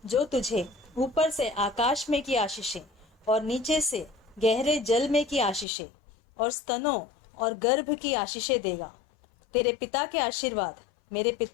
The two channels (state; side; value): drops out; right; at 5.7 s